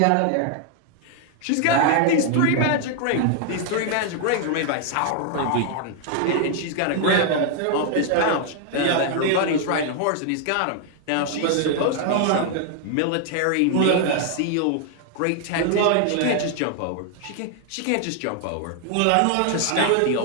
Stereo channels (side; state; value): both; different; correlation 0.00